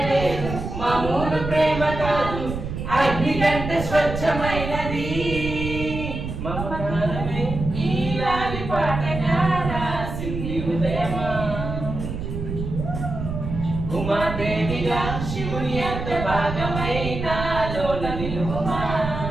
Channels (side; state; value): right; noise; rumble, 6 dB below the sound